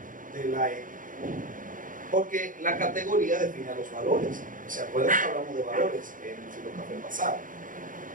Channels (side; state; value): left; late; 0.39 ms